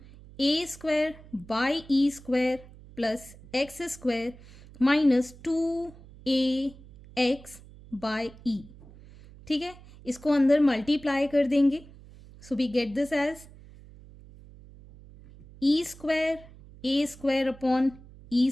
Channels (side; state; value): right; noise; hum, 20 dB below the sound